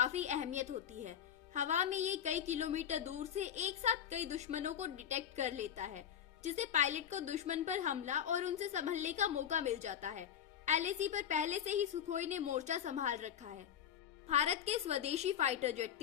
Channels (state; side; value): quieter; right; 9.4 dB